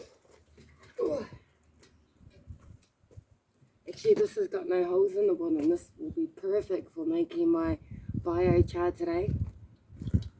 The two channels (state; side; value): identical; both; correlation 1.00